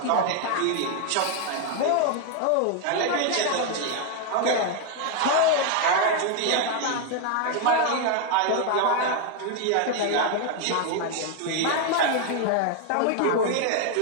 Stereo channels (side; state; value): both; different; correlation 0.01